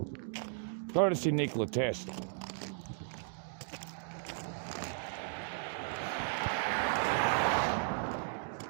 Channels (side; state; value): left; silent; digital silence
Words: Courtesy Nikola Tesla.